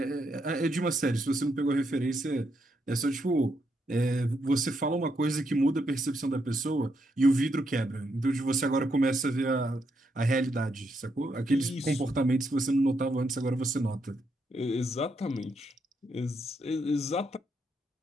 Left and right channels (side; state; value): both; normal; correlation 0.79